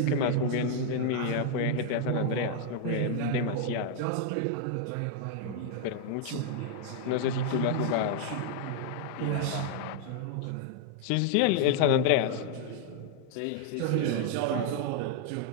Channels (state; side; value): different; both; correlation 0.00